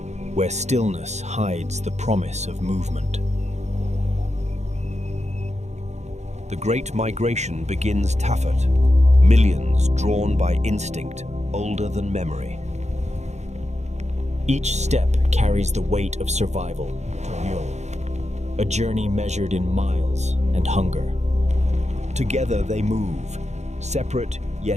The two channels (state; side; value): late; left; 0.33 ms